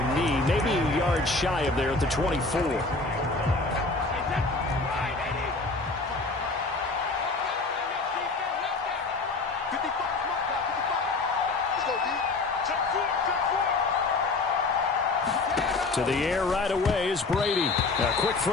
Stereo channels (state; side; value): quieter; right; 3.6 dB